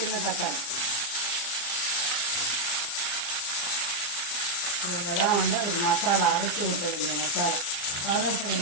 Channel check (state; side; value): late; right; 34 ms